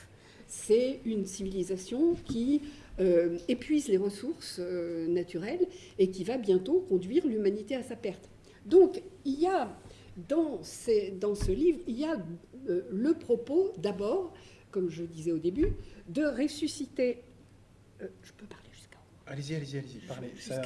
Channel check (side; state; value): both; identical; correlation 1.00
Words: C'est une civilisation qui épuise les ressources naturelles et qui va bientôt conduire l'humanité à sa perte. Donc, il y a dans ce livre, il y a le propos, d'abord, comme je disais au début, de ressusciter... je peux parler jusqu'à Allez-y, parlez. C'est